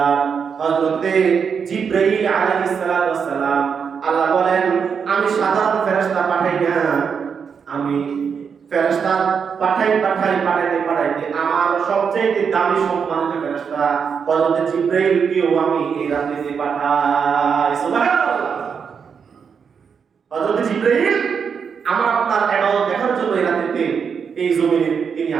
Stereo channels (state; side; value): quieter; left; 6.5 dB